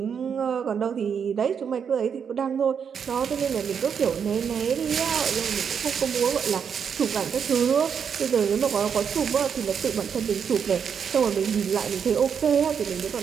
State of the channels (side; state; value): left; quieter; 7.1 dB